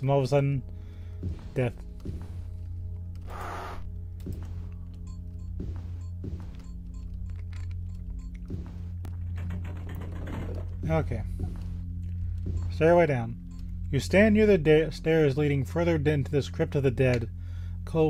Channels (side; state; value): both; identical; correlation 1.00